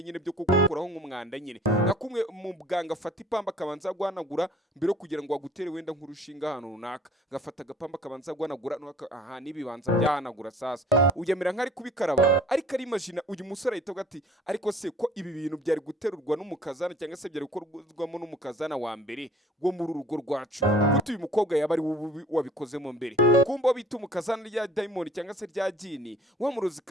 nyine byo kukuraho nk'umwanda nyine nakumwe mu bwanga afata ipamba kabanza guhanagura mbere kugira ngo agutere wenda nk'urushinga hano runaka gafata agapamba kabanza guhanagura aha nibibanza byahanagura sasa uyemera nk'ari kubikaraba ariko ari imagine uyu musore ahita ati ariko se ko ibi bintu byari guterurwa n'umukazana cyangwa se byari gukorwamo n'umukazana wa mbere go muri urugo rwacu gutu uyu mukobwa yaba ari wabikozemo mbere kumba bita umukazana rya Dayimoni cyangwa se rya Jini wa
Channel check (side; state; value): both; normal; correlation 0.51